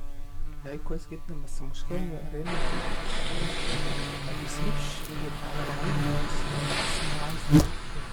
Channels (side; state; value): both; identical; correlation 1.00